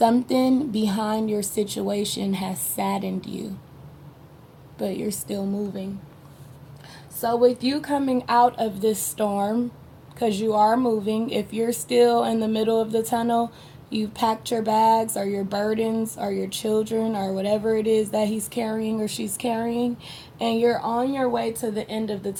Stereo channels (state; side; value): identical; both; correlation 1.00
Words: behind your situation has saddened you, but you're still moving. So with you coming out of this storm, because you are moving, if you're still in the middle of the tunnel, you've packed your bags or your burdens or your children or whatever it is that he's carrying or she's carrying, and you're on your way to the end of the